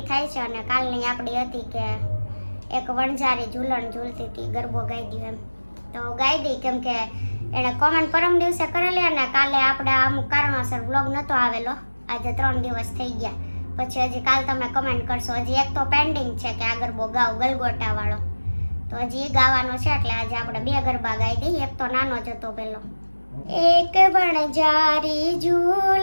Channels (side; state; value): both; inverted; correlation -1.00